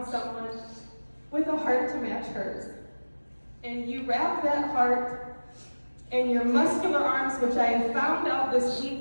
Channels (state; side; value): inverted; both; correlation -1.00